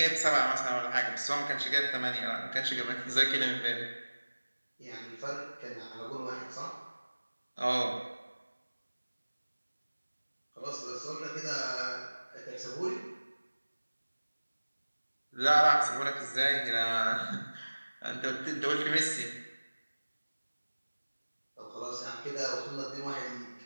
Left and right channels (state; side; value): inverted; both; correlation -1.00